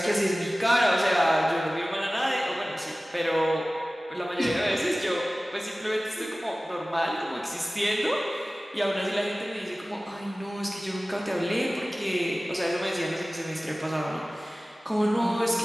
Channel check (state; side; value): normal; both; correlation 0.97